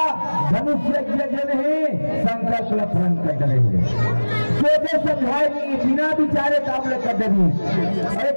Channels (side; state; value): both; inverted; correlation -1.00